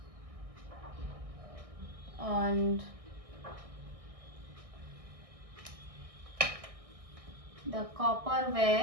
and the copper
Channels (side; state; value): left; late; 1.6 ms